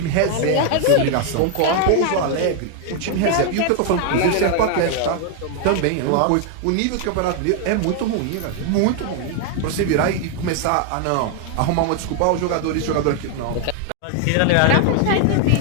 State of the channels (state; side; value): different; both; correlation 0.00